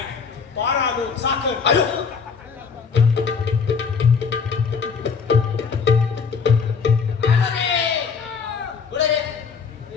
पार आलो साखर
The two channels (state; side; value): quieter; right; 5.7 dB